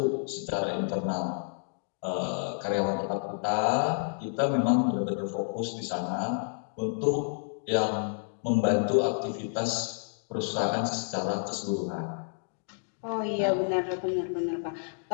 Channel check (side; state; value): right; silent; digital silence